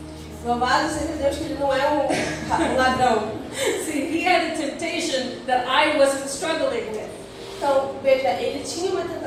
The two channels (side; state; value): both; identical; correlation 1.00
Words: Louvado seja Deus que ele não é um ladrão. See, he had a temptation that I wasn't struggling with. Então, veja, ele tinha uma